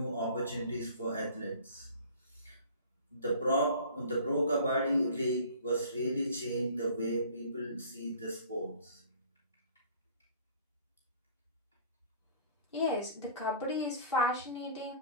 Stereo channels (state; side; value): inverted; both; correlation -0.47